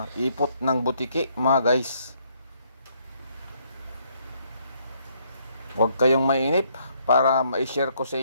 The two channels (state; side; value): inverted; both; correlation -0.69